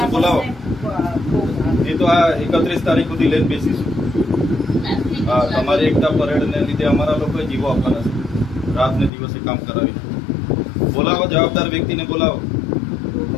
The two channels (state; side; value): drops out; right; at 9.1 s